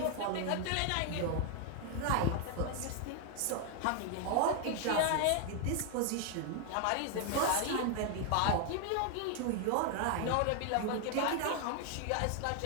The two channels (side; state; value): both; different; correlation 0.00